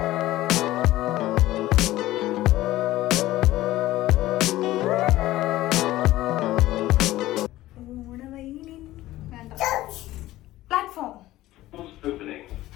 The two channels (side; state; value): right; quieter; 16.1 dB